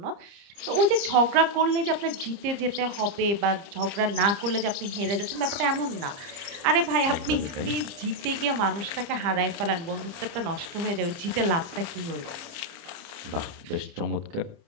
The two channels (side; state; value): left; late; 30 ms